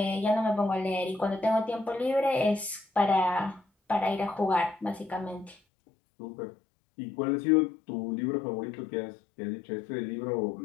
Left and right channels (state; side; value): drops out; right; at 5.6 s